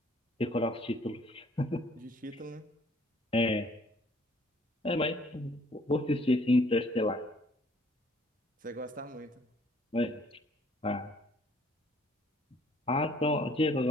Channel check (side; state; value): both; normal; correlation 0.60